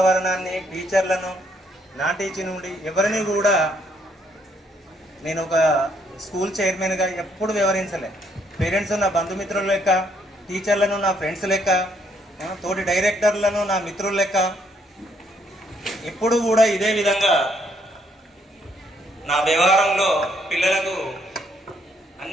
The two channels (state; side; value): normal; both; correlation 0.70